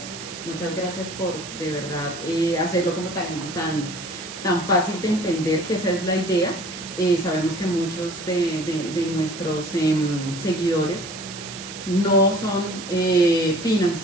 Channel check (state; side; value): noise; right; hiss, 11 dB below the sound